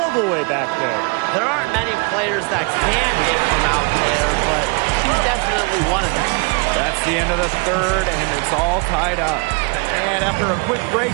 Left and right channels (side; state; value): left; quieter; 32.5 dB